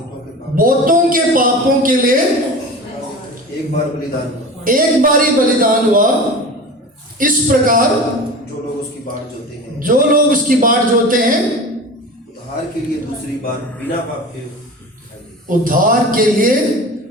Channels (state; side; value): normal; both; correlation 0.33